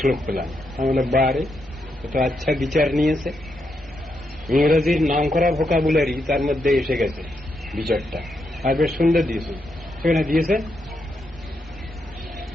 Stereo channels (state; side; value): normal; both; correlation 0.82